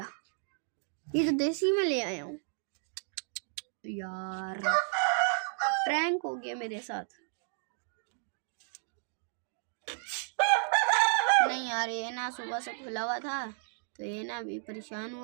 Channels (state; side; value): silent; left; digital silence